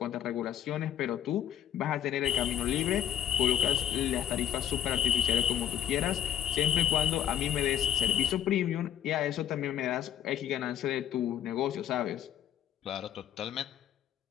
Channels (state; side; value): quieter; right; 10.3 dB